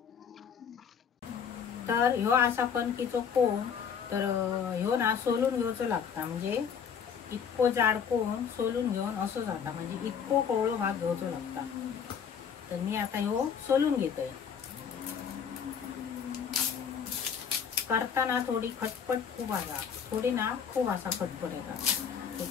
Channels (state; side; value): quieter; right; 7.2 dB